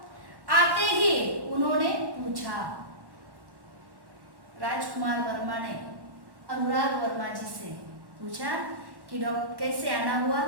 आते ही उन्होंने पूछा। राजकुमार वर्मा ने अनुराग वर्मा जी से पूछा कि डॉक्टर कैसे आना हुआ,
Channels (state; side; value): late; left; 1.1 ms